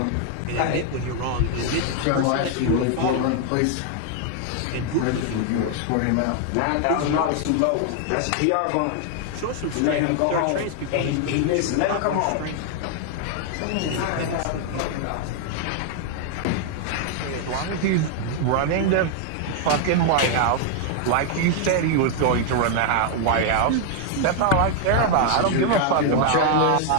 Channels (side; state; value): both; different; correlation 0.00